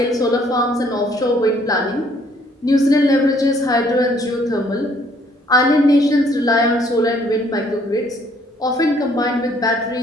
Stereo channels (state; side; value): normal; both; correlation 0.63